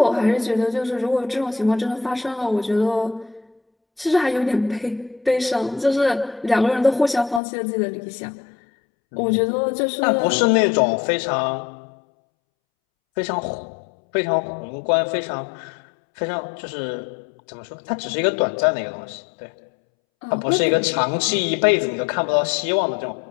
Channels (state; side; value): drops out; right; at 7.4 s